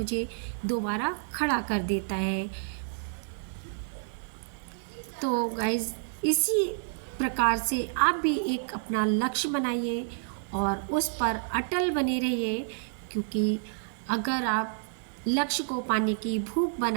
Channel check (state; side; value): silent; left; digital silence